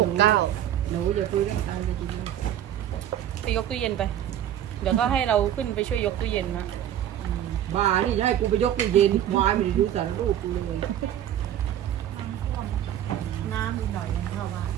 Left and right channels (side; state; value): left; quieter; 11.1 dB